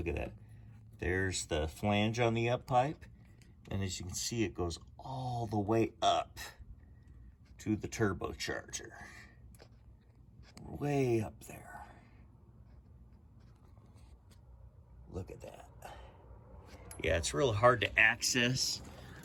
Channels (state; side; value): identical; both; correlation 1.00